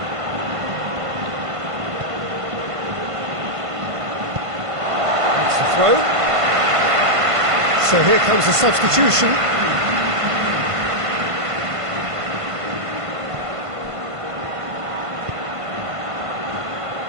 That's the throw. So here comes the substitution.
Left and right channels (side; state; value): left; late; 1.5 ms